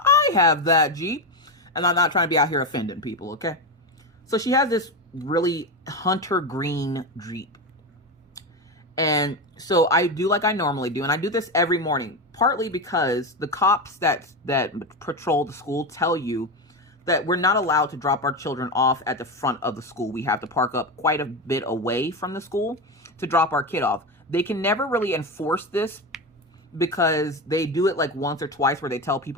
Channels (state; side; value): normal; both; correlation 0.16